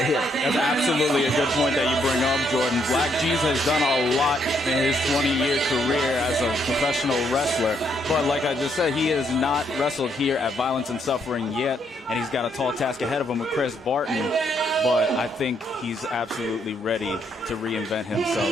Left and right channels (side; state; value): both; normal; correlation 0.73